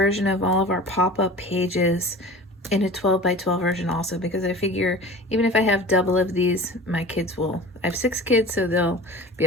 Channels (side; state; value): both; normal; correlation 0.38